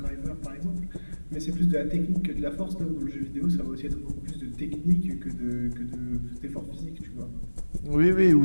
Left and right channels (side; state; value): both; inverted; correlation -1.00